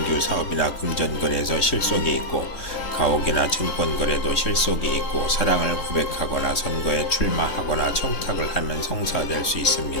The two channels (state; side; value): late; right; 3.6 ms